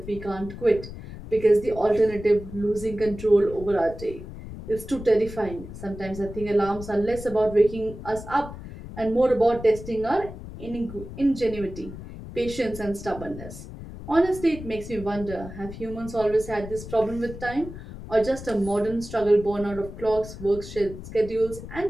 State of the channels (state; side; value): noise; left; rumble, 12 dB below the sound